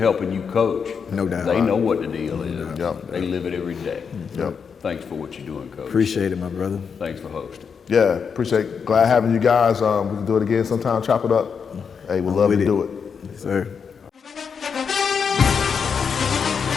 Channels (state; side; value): quieter; right; 6.3 dB